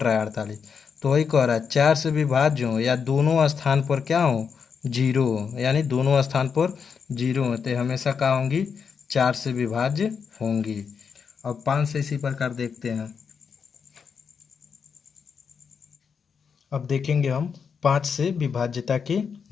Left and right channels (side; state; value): right; quieter; 6.3 dB